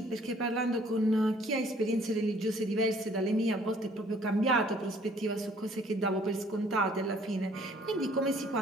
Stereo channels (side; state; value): both; normal; correlation 0.58